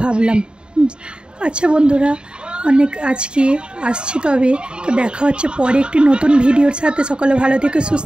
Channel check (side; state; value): left; late; 0.051 ms